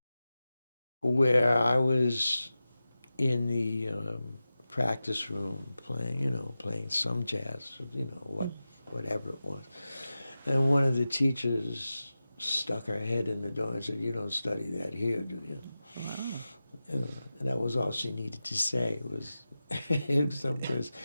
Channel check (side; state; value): both; inverted; correlation -0.94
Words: where I was in the practice room playing some jazz, whatever it was. And one of the teachers stuck her head in the door and said, "You don't study that here, do you?" Wow. And that was all she needed to say. Because